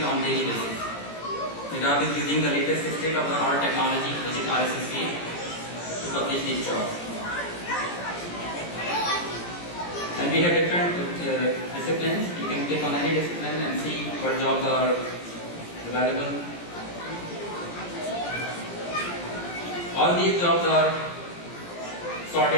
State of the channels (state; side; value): late; right; 17 ms